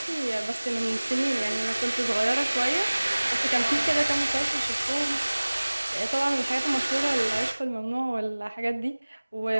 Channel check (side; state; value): both; inverted; correlation -1.00